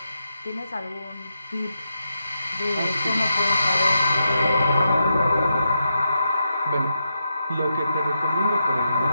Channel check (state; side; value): inverted; both; correlation -0.85